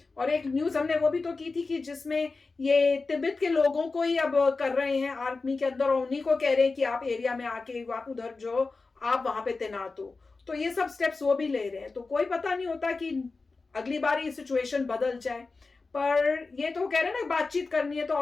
और एक न्यूज हमने वो भी तो की थी कि जिसमें ये तिब्बत के लोगों को ही अब कर रहे हैं आर्मी के अंदर, और उन्हीं को कह रहे हैं कि आप एरिया में आके आप उधर जो आप वहां पे तैनात हो। तो ये सब स्टेप्स वो भी ले रहे हैं। तो कोई पता नहीं होता कि अगली बार ये सिचुएशन बदल जाए। पर ये तो कह रहे हैं ना बातचीत करनी है, तो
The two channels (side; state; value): right; quieter; 3.9 dB